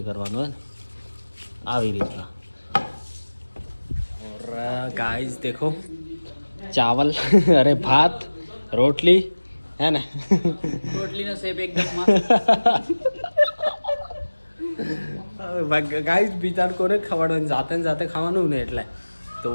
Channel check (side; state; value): both; inverted; correlation -1.00